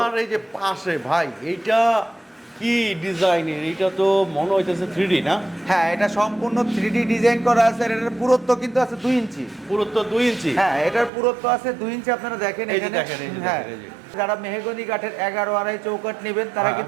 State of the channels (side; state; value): left; drops out; at 11.1 s